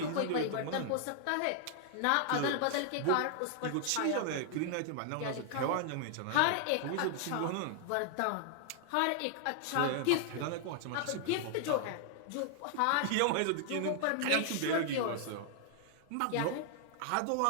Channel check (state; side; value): different; both; correlation 0.00